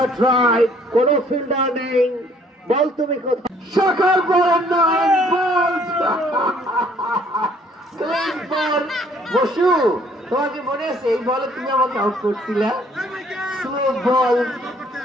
drive, কোনো ফিল্ডার নেই, বল তুমি কোথায়? সকাল বল 9 বলস ক্লিন বল। বসু, তোমাকে মনে আছে এই বলে তুমি আমাকে আউট করছিলে? স্লো বল,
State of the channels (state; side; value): normal; both; correlation 0.61